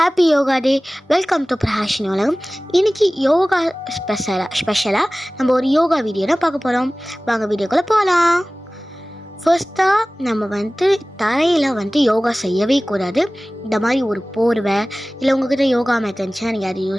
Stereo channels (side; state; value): both; normal; correlation 0.98